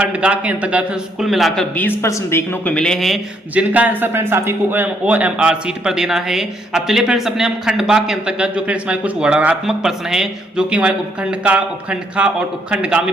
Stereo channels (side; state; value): both; normal; correlation 0.71